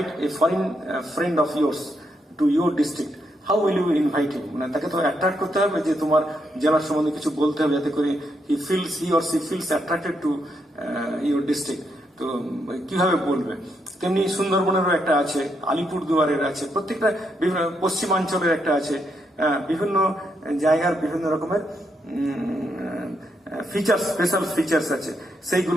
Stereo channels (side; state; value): both; normal; correlation 0.79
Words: a foreign friend of yours to your district, how will you invite him? মানে তাকে তো অ্যাট্রাক্ট করতে হবে যে তোমার জেলার সম্বন্ধে কিছু বলতে হবে, যাতে করে he or she feels attracted to your district. তো কিভাবে বলবে? তেমনি সুন্দরবনেরও একটা আছে, আলিপুরদুয়ারের আছে, প্রত্যেকটা পশ্চিমাঞ্চলের একটা আছে, বিভিন্ন জায়গার বিভিন্ন রকমের ফিচার্স, স্পেশাল ফিচার্স আছে,